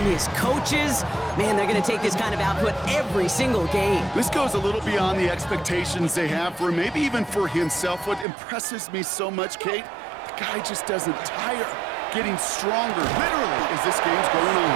His coaches, man, they're going to take this kind of output every single game. This goes a little beyond the expectations they have for him, maybe even for himself. What impresses me so much, Kate, the guy just doesn't tire. Getting stronger, literally, as this game's going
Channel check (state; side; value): drops out; left; at 8.2 s